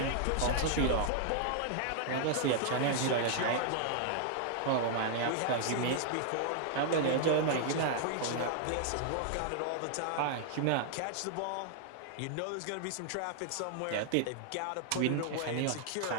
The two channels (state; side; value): different; both; correlation 0.00